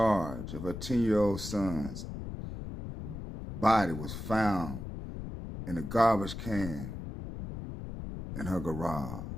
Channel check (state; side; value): noise; left; rumble, 8 dB below the sound